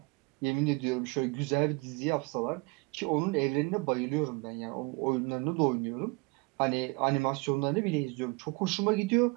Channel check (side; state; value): left; quieter; 28.4 dB